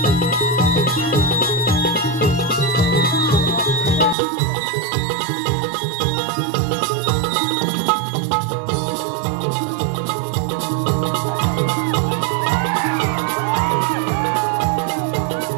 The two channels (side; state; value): left; drops out; at 4.2 s